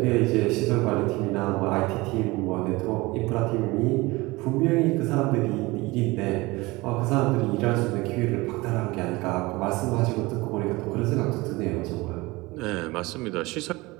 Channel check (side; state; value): left; quieter; 22.2 dB